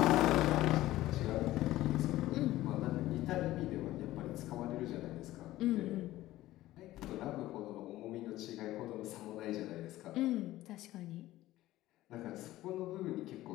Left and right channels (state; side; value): quieter; right; 15.8 dB